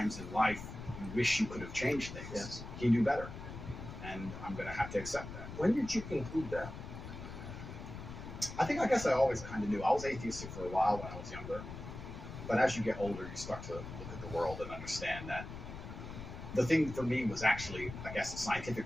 in life you wish you could have changed things, yes, he knew better. And I'm going to have to accept that. When did you conclude that? I guess I always kind of knew. I was atheistic for a while when I was younger. But as you get older, you start to look at the world and understand that the thing for me was actually, I guess, a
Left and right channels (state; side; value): noise; left; rumble, 10 dB below the sound